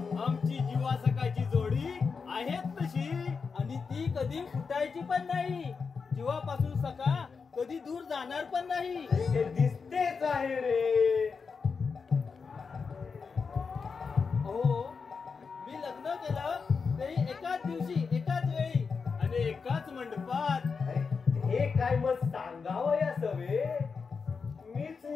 आमची जीवा सकाळची जोडी आहेच तशी, आणि ती कधी फुटायची पण नाही. जीवापासून सका कधी दूर जाणार पण नाही. ते दिसतेच आहे रे. हो, मी लग्न केलं तरी एकाच दिवशी, एकाच वेळी आणि एकाच मंडपात. हे काय मग सांगावं या सवे? मीच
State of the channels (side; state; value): right; quieter; 5.2 dB